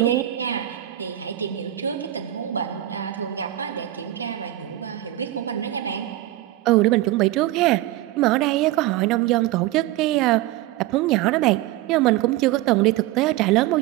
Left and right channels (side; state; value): left; quieter; 15.0 dB